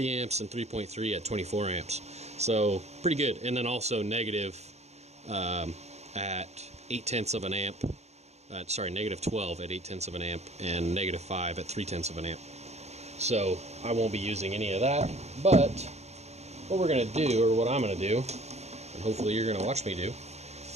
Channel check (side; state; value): left; late; 0.32 ms